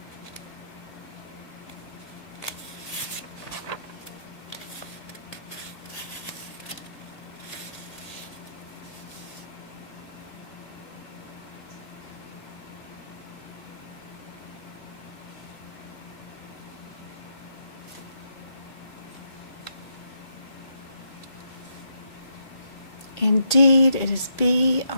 Indeed, it is B,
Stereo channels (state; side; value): late; right; 2.4 ms